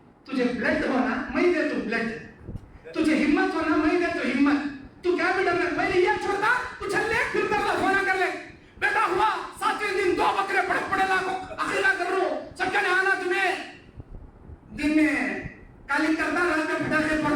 تجھے بلڈ ہونا میں دے تو بلڈ, تجھے ہمت ہونا میں دے تو ہمت, تو کیا بھی ڈرنا, پہلے یہ چھوڑتا اچھل لے پھر کر لے, ہونا کر لے. بیٹا ہوا 7ویں دن 2 بکرے پڑے لاکھوں اخیرہ کر رہو, سب کہنے آنا تمہیں, دن میں کالنگ کرتا, رات میں پھٹاکے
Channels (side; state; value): both; identical; correlation 1.00